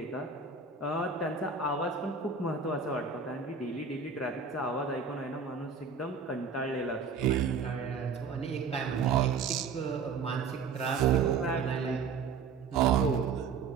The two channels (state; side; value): quieter; left; 5.3 dB